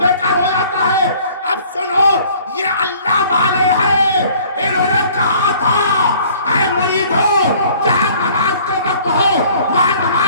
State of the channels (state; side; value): inverted; both; correlation -0.54